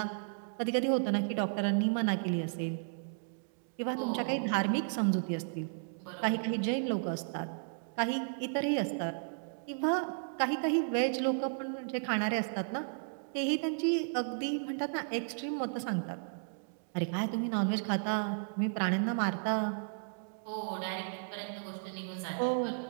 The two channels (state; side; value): silent; left; digital silence